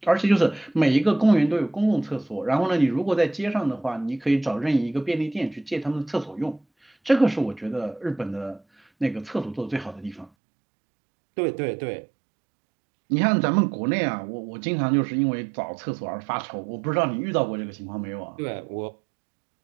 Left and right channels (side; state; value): left; drops out; at 10.3 s